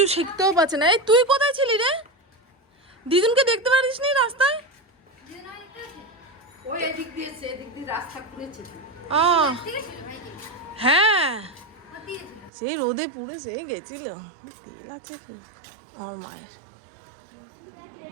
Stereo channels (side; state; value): left; drops out; at 12.5 s